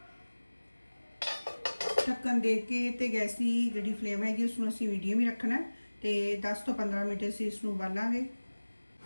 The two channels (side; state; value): both; inverted; correlation -1.00